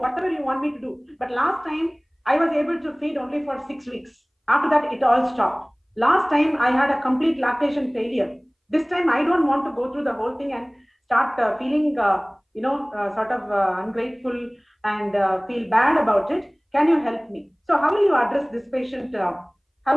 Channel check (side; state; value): both; identical; correlation 1.00